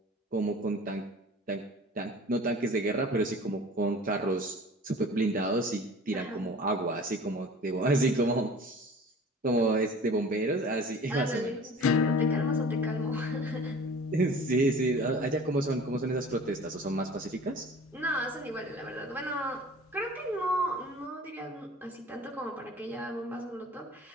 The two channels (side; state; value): both; normal; correlation 0.43